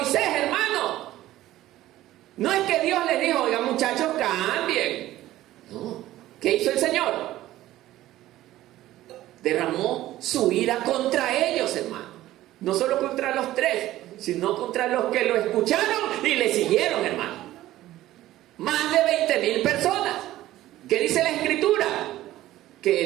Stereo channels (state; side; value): quieter; left; 15.0 dB